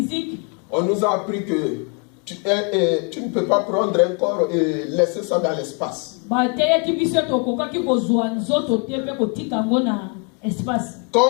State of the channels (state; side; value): quieter; right; 36.6 dB